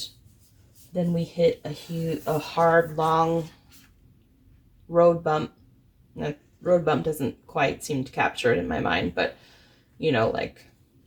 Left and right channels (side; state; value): both; identical; correlation 1.00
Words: then we hit a hard, long road bump. The road bump doesn't quite seem to capture it in my mind, but, you know, like